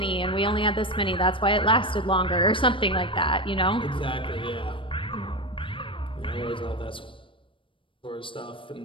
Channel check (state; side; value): late; right; 0.25 ms